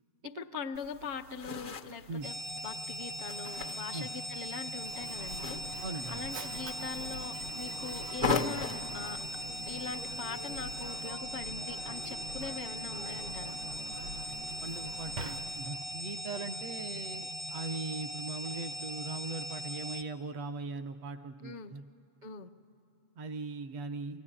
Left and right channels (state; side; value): late; left; 7.7 ms